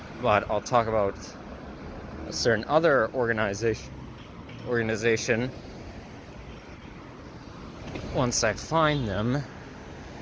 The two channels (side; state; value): both; identical; correlation 1.00